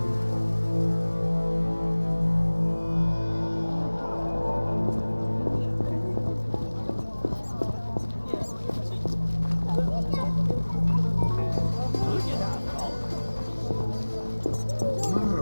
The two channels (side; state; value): both; inverted; correlation -1.00